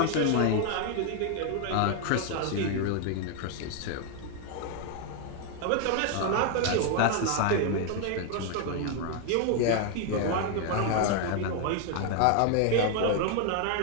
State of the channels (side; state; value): both; different; correlation 0.00